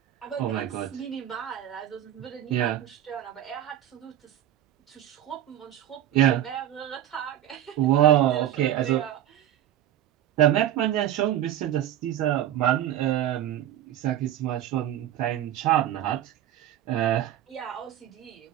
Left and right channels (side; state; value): left; quieter; 11.9 dB